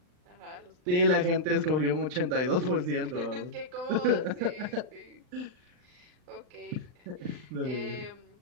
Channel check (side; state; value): left; late; 39 ms